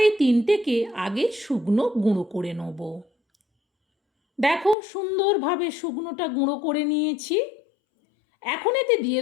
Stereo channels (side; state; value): right; drops out; at 4.8 s